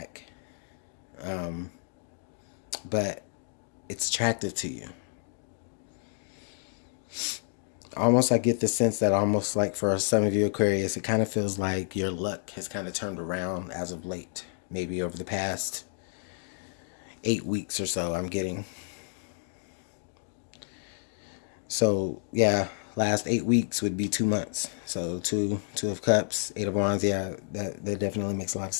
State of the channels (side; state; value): right; silent; 58 dB below the other